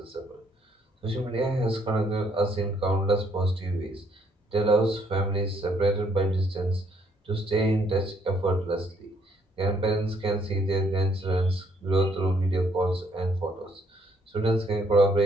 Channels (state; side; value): normal; both; correlation 0.68